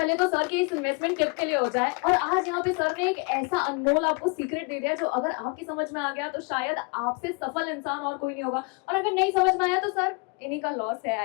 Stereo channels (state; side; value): quieter; right; 31.7 dB